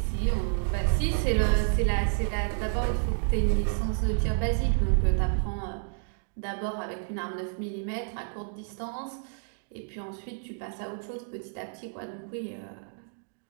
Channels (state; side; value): silent; left; digital silence